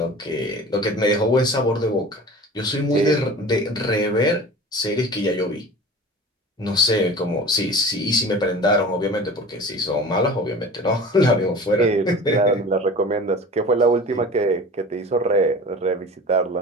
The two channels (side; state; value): both; normal; correlation 0.38